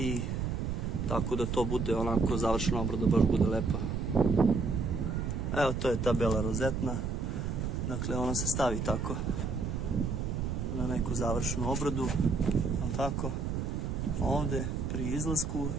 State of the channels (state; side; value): noise; right; rumble, 1 dB below the sound